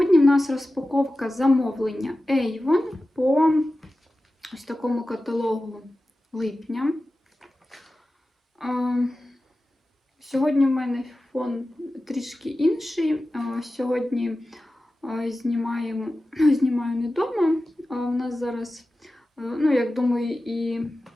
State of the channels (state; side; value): normal; both; correlation 0.94